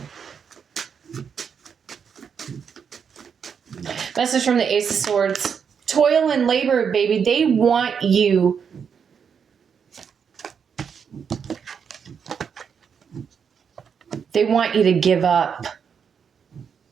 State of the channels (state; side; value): quieter; left; 6.9 dB